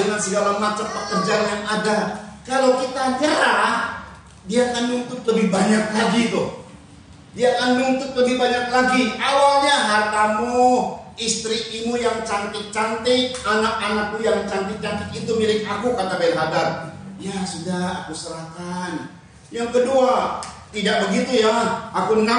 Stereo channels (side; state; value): both; identical; correlation 1.00